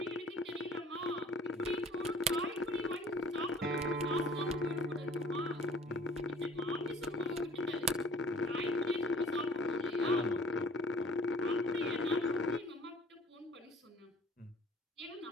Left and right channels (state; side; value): normal; both; correlation 0.52